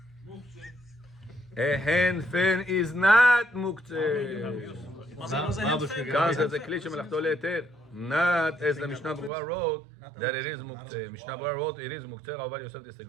A hand fan is not מוקצה. Was a hand fan? כאן זה כלי שמלאכתו להיתר. Not as the Mishnah Berurah wrote that it is מוקצה. Mishnah Berurah wrote it is מוקצה. Rabbi Yosef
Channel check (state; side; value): drops out; left; at 9.3 s